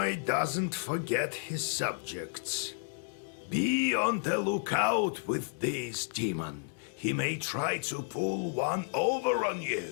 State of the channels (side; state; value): right; silent; digital silence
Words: doesn't forget his subjects. Be on the lookout with this demon. He may try to pull one over on